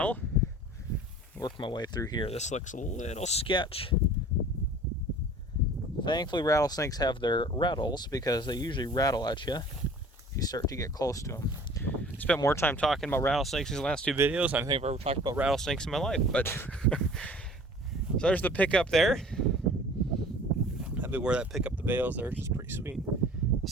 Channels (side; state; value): both; normal; correlation 0.46